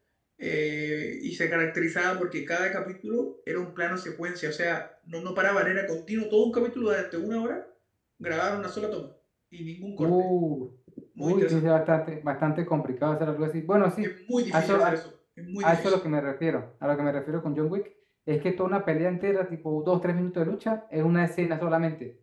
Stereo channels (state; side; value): identical; both; correlation 1.00